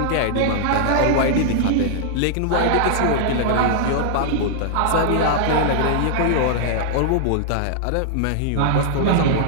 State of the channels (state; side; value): different; both; correlation -0.01